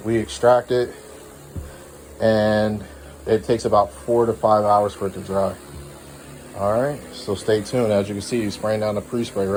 extract it, and it takes about 4 to 5 hours for it to dry. All right, so stay tuned. As you can see, he's spraying down the pre-spray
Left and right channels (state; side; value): identical; both; correlation 1.00